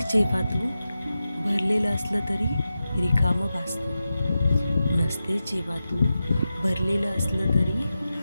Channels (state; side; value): inverted; both; correlation -0.92